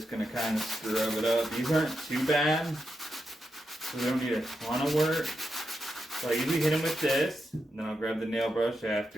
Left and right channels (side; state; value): both; normal; correlation 0.86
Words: going to kind of scrub it up. These aren't too bad, so we don't need a ton of work. So I usually hit them with this, and then I'll grab the nail brush